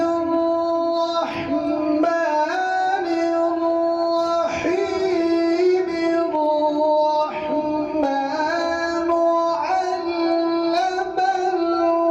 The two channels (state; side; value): identical; both; correlation 1.00